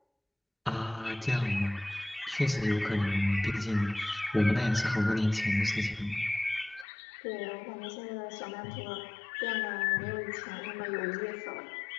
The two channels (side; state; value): right; drops out; at 6.9 s